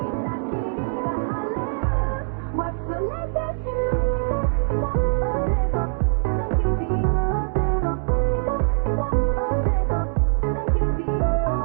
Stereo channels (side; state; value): left; silent; digital silence